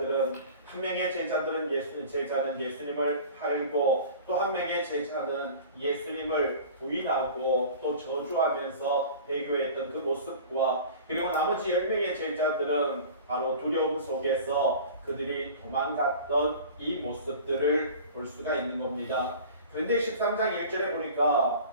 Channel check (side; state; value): both; inverted; correlation -0.40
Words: 한 명의 제자는 예수님을 팔고 또 한 명의 제자는 예수님을 부인하고 또 저주하면서 배교했던 그 모습과 그리고 나머지 10명의 제자들은 바로 두려움 속에서 그들이 도망갔던 이 모습들을 볼 수가 있는 겁니다. 그런데 13장 1절에 보니까